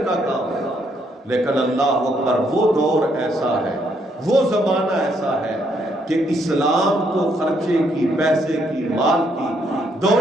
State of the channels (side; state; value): both; normal; correlation 0.72